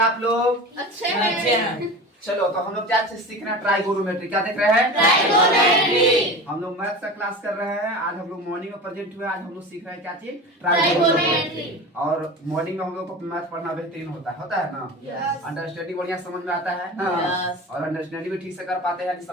लोग? अच्छे हैं। चलो, तो हम लोग क्या सीख रहे हैं? ट्राइगोनोमेट्री। क्या देख रहे हैं? ट्राइगोनोमेट्री। हम लोग मैथ का क्लास कर रहे हैं। आज हम लोग मॉर्निंग में प्रेजेंट हुए। आज हम लोग सीख रहे हैं क्या चीज? ट्राइगोनोमेट्री। और मॉर्निंग में हम लोग को मैथ पढ़ना बेहतरीन होता है ना? Yes. अंडरस्टैंडिंग बढ़िया समझ में आता है ना? Yes. और अंडरस्टैंडिंग भी ठीक से कर पाते हैं,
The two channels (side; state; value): both; normal; correlation 0.32